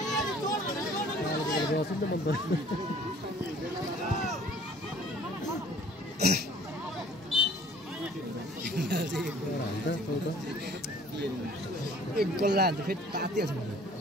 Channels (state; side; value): normal; both; correlation 0.53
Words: एक गोल लाग्छ फेरि तातिहाल्छ मलाई